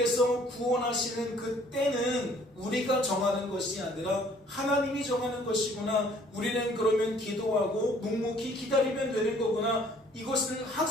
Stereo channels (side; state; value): both; normal; correlation 0.58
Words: 구원하시는 그 때는 우리가 정하는 것이 아니라 하나님이 정하는 것이구나. 우리는 그러면 기도하고 묵묵히 기다리면 되는 거구나. 이것을